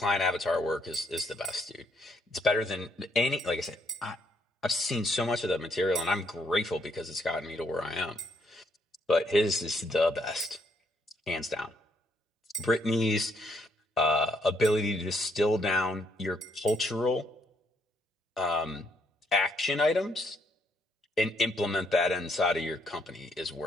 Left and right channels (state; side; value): normal; both; correlation 0.72